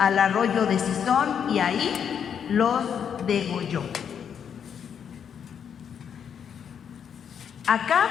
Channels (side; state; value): right; quieter; 7.9 dB